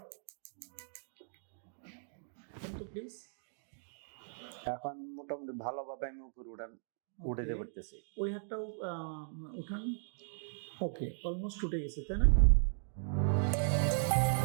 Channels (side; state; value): left; silent; digital silence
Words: কিন্তু প্লিজ এখন মোটামুটি ভালোভাবে আমি উপরে উঠাতে পারতেছি। ওই হাতটাও উঠান। ওকে, অলমোস্ট উঠে গেছে তাই না?